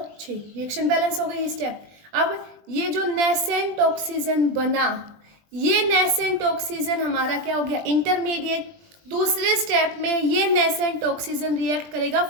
6, रिएक्शन बैलेंस हो गई ये स्टेप। अब ये जो नेसेंट ऑक्सीजन बना, ये नेसेंट ऑक्सीजन हमारा क्या हो गया? इंटरमीडिएट। दूसरे स्टेप में ये नेसेंट ऑक्सीजन रिएक्ट करेगा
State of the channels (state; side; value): late; left; 20 ms